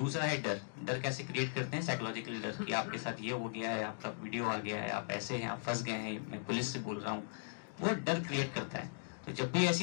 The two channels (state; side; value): silent; right; digital silence